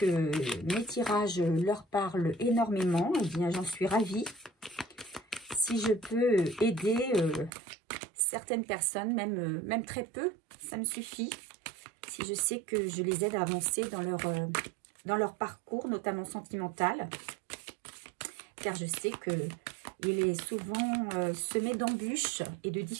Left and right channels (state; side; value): drops out; left; at 7.5 s